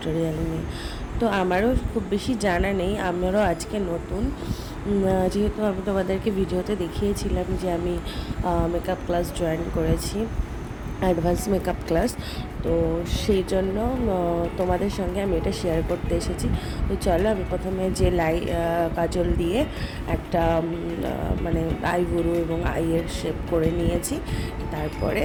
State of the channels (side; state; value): both; identical; correlation 1.00